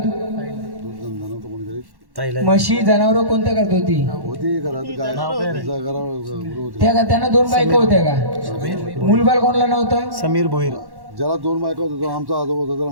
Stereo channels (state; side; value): late; left; 1.1 ms